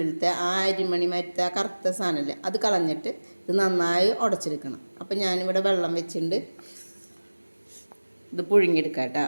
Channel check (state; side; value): inverted; both; correlation -1.00